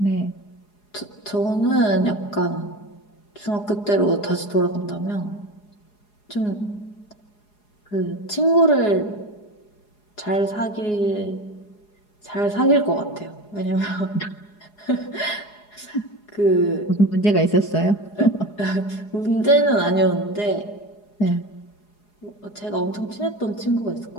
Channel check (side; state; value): right; late; 4.8 ms